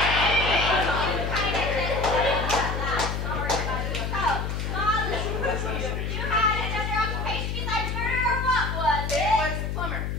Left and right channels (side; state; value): left; noise; hum, 2 dB below the sound